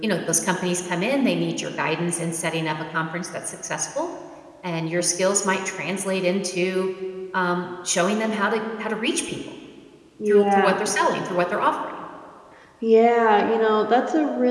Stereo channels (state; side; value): identical; both; correlation 1.00